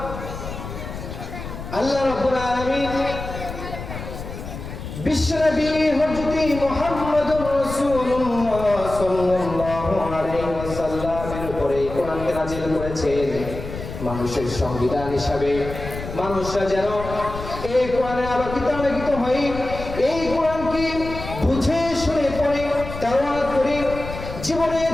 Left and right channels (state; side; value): noise; left; rumble, 9 dB below the sound